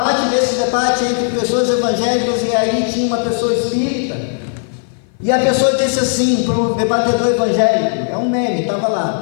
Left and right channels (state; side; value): silent; right; 56 dB below the other